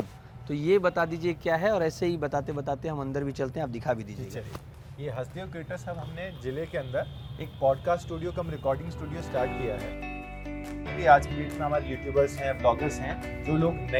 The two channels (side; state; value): both; identical; correlation 1.00